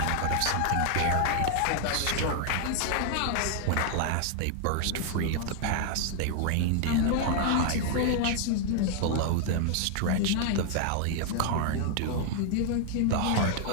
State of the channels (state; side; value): different; both; correlation 0.00